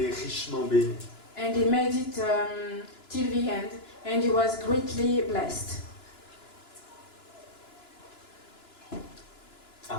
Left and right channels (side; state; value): right; late; 2.9 ms